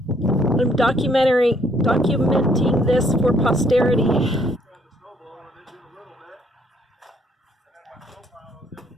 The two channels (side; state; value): both; normal; correlation 0.67